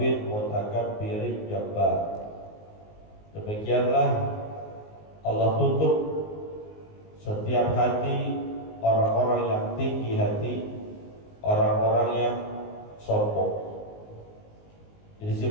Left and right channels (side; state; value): right; late; 19 ms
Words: mutakabbirin jabbar. Demikianlah Allah tutup setiap hati orang-orang yang tinggi hati, orang-orang yang sombong. Jadi